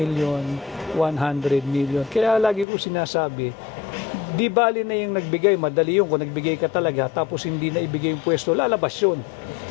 100 million. Kaya lagi ko sinasabi, di bali na yung nagbigay, madali yung kung nagbigay ka talaga tapos hindi na ibigay yung pwesto, lalabas yun.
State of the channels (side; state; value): right; drops out; at 2.7 s